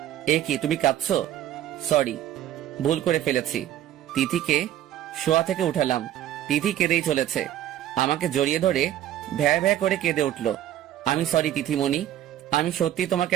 এ কি তুমি কাঁদছো? সরি, ভুল করে ফেলেছি। তিথিকে শোয়া থেকে উঠালাম। তিথি কেঁদেই চলেছে। আমাকে জড়িয়ে ধরে ভ্যা ভ্যা করে কেঁদে উঠলো। আমি সরি তিথিমণি, আমি সত্যি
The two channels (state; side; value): quieter; left; 12.1 dB